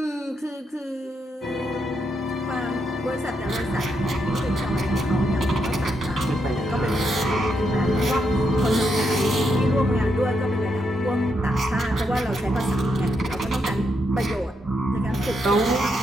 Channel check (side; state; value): both; normal; correlation 0.80